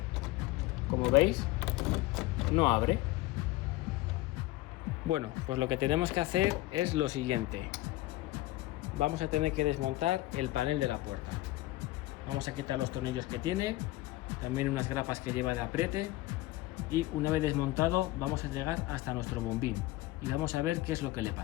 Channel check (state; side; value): quieter; right; 17.9 dB